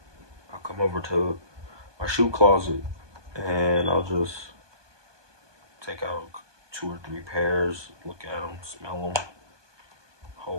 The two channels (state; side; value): late; left; 1.2 ms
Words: come over to my shoe closet and I'll just take out 2 or 3 pairs, look at them, smell them,